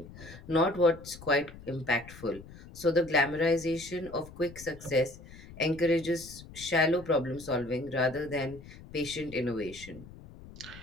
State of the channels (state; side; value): noise; left; rumble, 17 dB below the sound